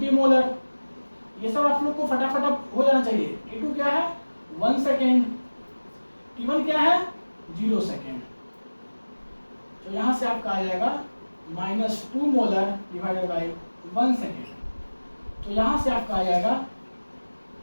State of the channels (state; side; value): inverted; both; correlation -1.00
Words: मोलर। ये सब आप लोग को फटाफट हो जाना चाहिए। T2 क्या है? 1 सेकेंड। T1 क्या है? 0 सेकेंड। तो यहां से आपका आ जाएगा -2 मोलर डिवाइडेड बाय 1 सेकेंड। तो यहां से आपका आ जाएगा,